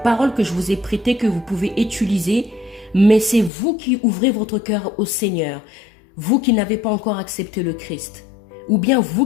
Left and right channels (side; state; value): right; drops out; at 3.5 s